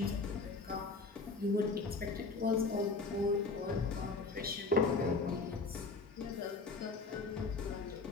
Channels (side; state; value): right; quieter; 4.0 dB